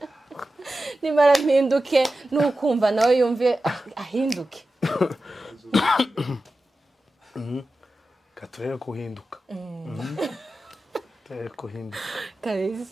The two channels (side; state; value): both; normal; correlation 0.93